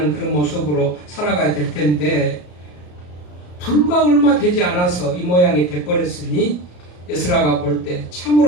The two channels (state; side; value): late; right; 34 ms